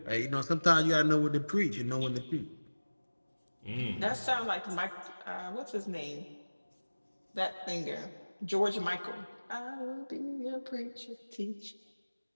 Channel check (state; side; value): inverted; both; correlation -1.00